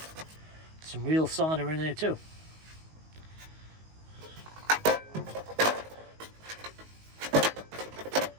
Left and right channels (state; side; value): late; left; 19 ms